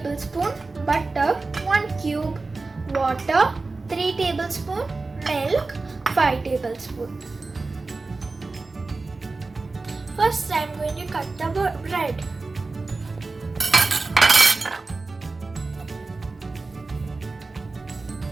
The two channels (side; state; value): left; quieter; 3.7 dB